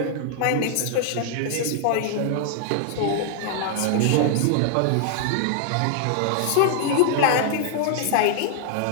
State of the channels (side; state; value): both; different; correlation 0.00